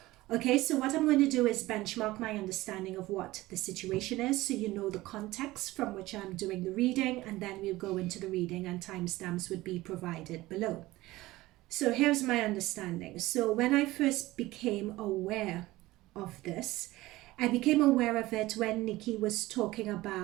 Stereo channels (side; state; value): left; quieter; 18.3 dB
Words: Okay, so what I'm going to do is benchmark my understanding of what the situation is so you know the context from which I'm doing the reading, and then we'll go into the reading and timestamps would be provided below. So here's my understanding. So when I first became aware of this, I became aware of it when Nikki was talking